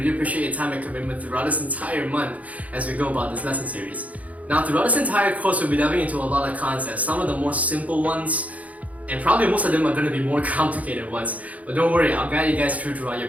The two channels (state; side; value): late; left; 0.070 ms